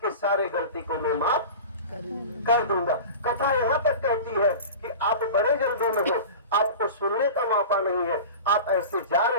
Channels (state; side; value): inverted; both; correlation -0.33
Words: सारे गलती को मैं माफ कर दूंगा। कथा यहाँ तक कहती है कि आप बड़े जल्दी में हो, आपको सुनने का मौका नहीं है, आप ऐसे जा